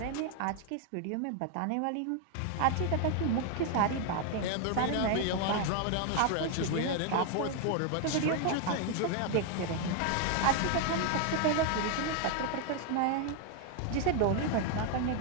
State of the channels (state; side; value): different; both; correlation 0.00